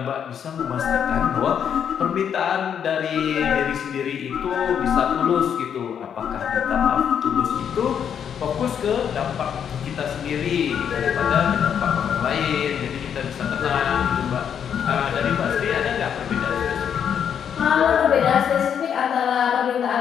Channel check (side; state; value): right; quieter; 8.2 dB